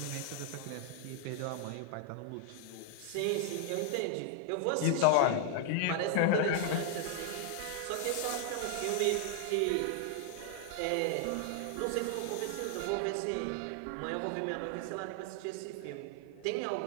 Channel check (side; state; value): both; different; correlation 0.00